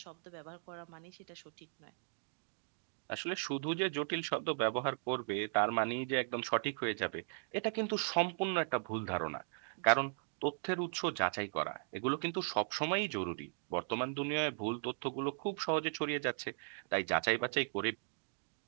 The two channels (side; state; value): left; silent; digital silence